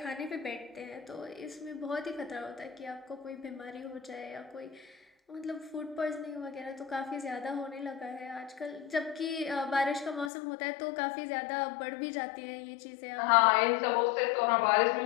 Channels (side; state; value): right; drops out; at 10.3 s